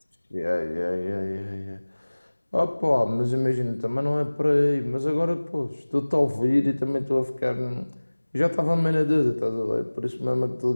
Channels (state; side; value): inverted; both; correlation -1.00